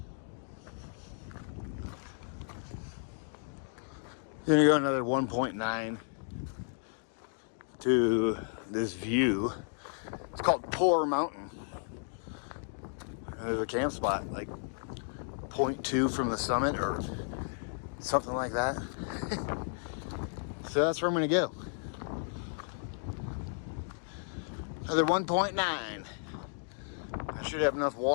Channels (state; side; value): silent; right; 55 dB below the other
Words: Then you go another 1.9 to this view. It's called Poor Mountain. There's a camp spot like 0.2 from the summit or something like that. So that's where I'm gonna go. Another 1.9. I should have enough